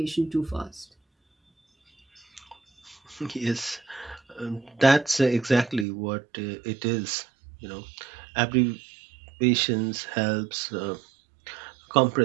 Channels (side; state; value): left; drops out; at 5.9 s